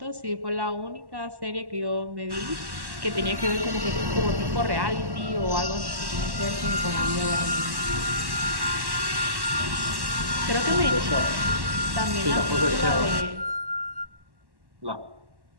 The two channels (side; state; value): left; late; 1.1 ms